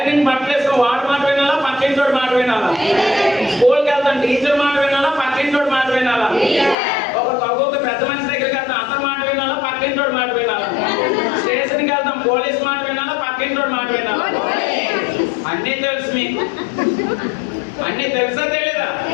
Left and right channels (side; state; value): right; drops out; at 6.8 s